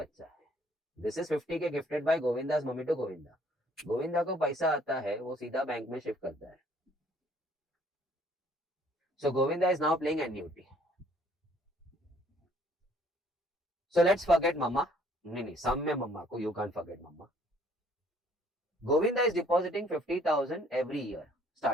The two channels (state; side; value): normal; both; correlation 0.61